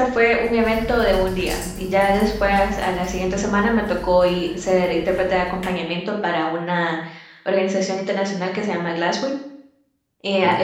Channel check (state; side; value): identical; both; correlation 1.00